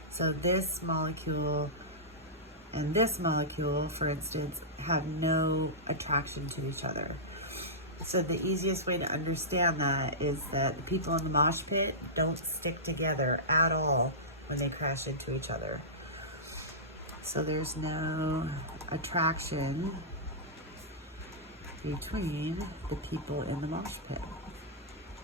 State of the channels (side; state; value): both; normal; correlation -0.16